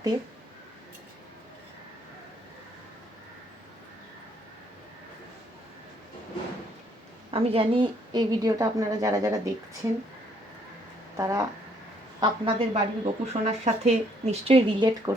আমি জানি এই ভিডিওটা আপনারা যারা যারা দেখছেন তারা আপনাদের বাড়ির গোপু সোনার সাথে নিশ্চয়ই রিলেট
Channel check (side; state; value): both; normal; correlation 0.67